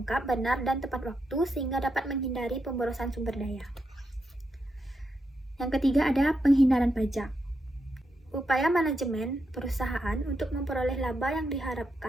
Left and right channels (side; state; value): both; normal; correlation 0.83